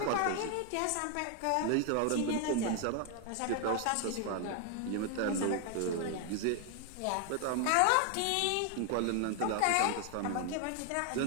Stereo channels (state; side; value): different; both; correlation 0.00